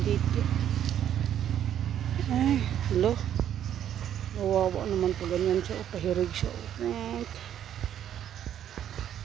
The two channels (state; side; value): quieter; left; 10.3 dB